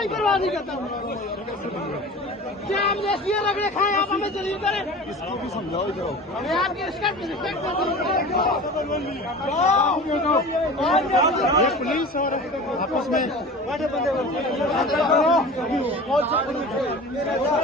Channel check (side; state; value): both; normal; correlation 0.36